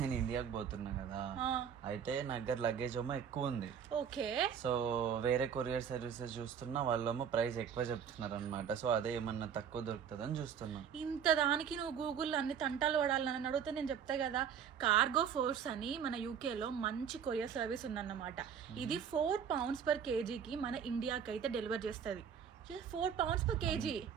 ఇండియాకి పోతున్నా కదా, అయితే నా దగ్గర లగేజ్ ఏమో ఎక్కువ ఉంది. ఓకే, సో వేరే కొరియర్ సర్వీసెస్ చూస్తున్నా, వాళ్ళేమో ప్రైస్ ఎక్కువ చెప్తున్నారు అనమాట. సో అదే ఏమన్నా తక్కువ దొరుకుతుందని చూస్తున్నా. ఇంత దానికి నువ్వు గూగుల్లో అన్ని తంటాలు పడాలని అడిగితే నేను చెప్తా కదా, కార్గో ఫోర్స్ అని మన యూకేలో మంచి కొరియర్ సర్వీస్ ఉందన్నమాట. ఇది 4 pounds per kgకి మన ఇండియాకి అయితే డెలివర్ చేస్తుంది. 4 pounds per kg.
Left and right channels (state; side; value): quieter; left; 7.8 dB